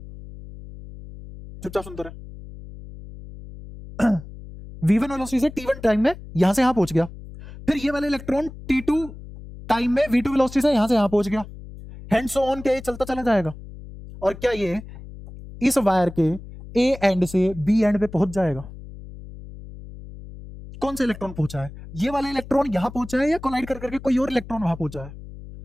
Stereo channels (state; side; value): noise; left; hum, 15 dB below the sound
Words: चुपचाप सुनते रहे। v1 वेलोसिटी से t1 टाइम में यहां से यहां पहुंच गया, फिर ये वाला इलेक्ट्रॉन t2 टाइम में v2 वेलोसिटी से यहां से यहां पहुंच गया, हैंड सो ऑन के चलता चला जाएगा। और क्या ये इस वायर के ए एंड से बी एंड पे पहुंच जाएगा? कौन सा इलेक्ट्रॉन पहुंचा है? ये वाला इलेक्ट्रॉन यहां पहुंचा है, या कोलाइड कर करके कोई और इलेक्ट्रॉन वहां पहुंचा है?